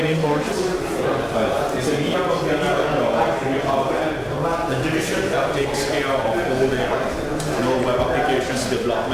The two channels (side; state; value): both; identical; correlation 1.00